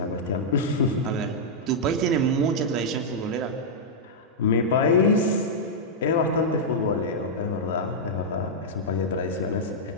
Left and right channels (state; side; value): normal; both; correlation -0.07